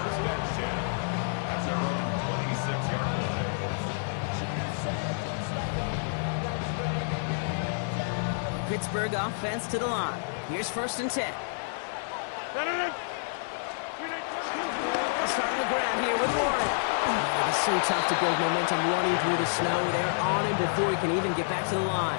and 10 at their own 26-yard line. Pittsburgh offense to the line. Here's first and 10. They'll start on the ground here with Warren. Oh, it is so tough to build momentum running through the snow. They're on him before he can even get back to the line.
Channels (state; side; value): silent; right; digital silence